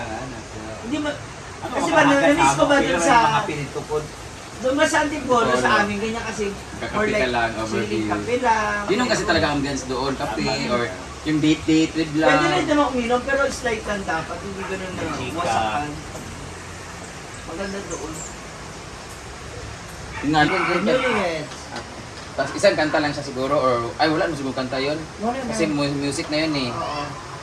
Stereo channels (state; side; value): identical; both; correlation 1.00